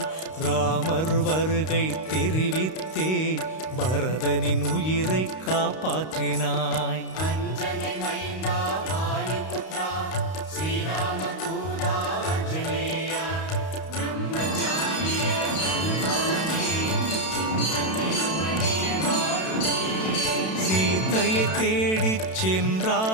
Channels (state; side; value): late; right; 32 ms